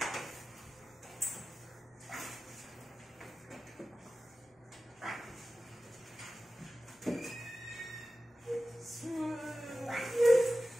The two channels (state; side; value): normal; both; correlation 0.95